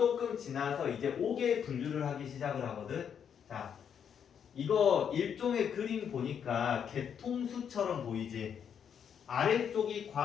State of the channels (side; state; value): right; quieter; 7.9 dB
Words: 지나서 이제 5개 분류를 하기 시작을 하거든. 자, 이거 일종의 그림 보니까 개통수처럼 보이지? 아래쪽이